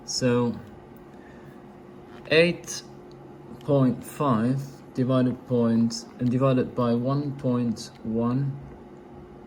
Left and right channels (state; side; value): identical; both; correlation 1.00